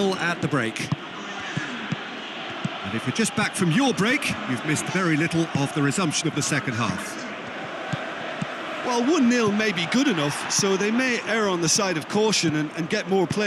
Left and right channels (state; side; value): identical; both; correlation 1.00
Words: at the break. And if you're just back from your break, you've missed very little of the resumption of the second half. Well, 1-0 may be good enough, so they may err on the side of caution and get more